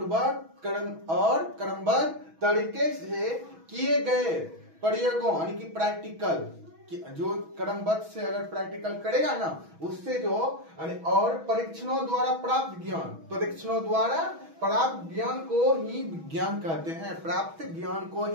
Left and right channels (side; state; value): left; late; 6.2 ms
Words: क्रमबद्ध तरीके से किए गए प्रयोगों, यानी कि प्रैक्टिकल, जो क्रमबद्ध से अगर प्रैक्टिकल करेगा ना, उससे जो और परीक्षणों द्वारा प्राप्त ज्ञान, परीक्षणों द्वारा प्राप्त ज्ञान को ही विज्ञान कहते हैं। प्राप्त ज्ञान को